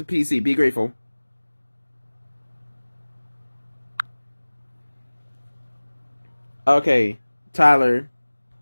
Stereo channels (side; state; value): both; inverted; correlation -1.00